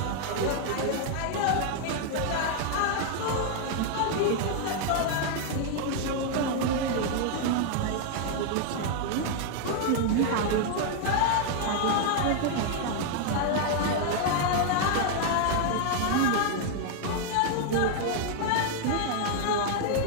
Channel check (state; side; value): different; both; correlation 0.00